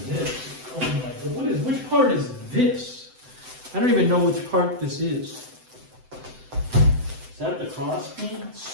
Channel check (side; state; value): left; late; 7.8 ms